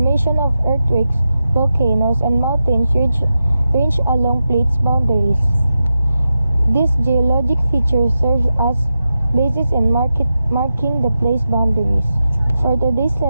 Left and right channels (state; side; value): inverted; both; correlation -0.90